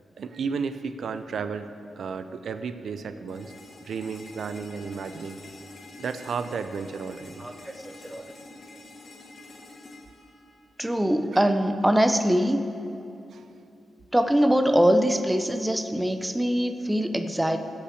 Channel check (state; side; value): normal; both; correlation 0.94